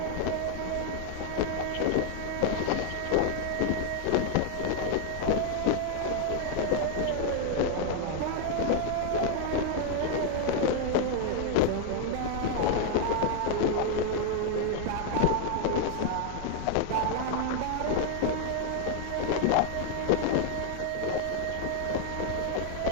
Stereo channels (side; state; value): both; different; correlation 0.00